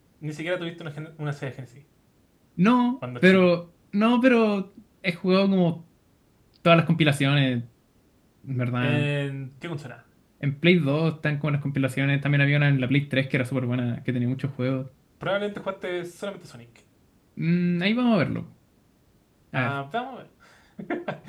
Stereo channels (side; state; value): both; identical; correlation 1.00